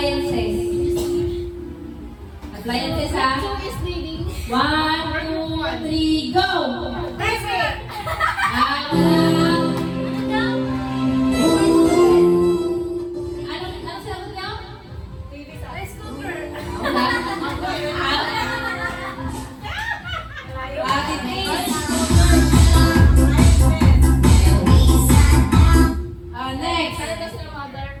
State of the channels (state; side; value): identical; both; correlation 1.00